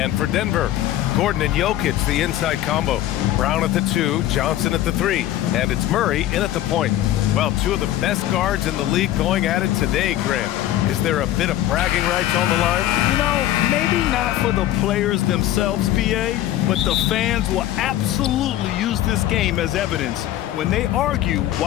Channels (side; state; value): right; quieter; 13.5 dB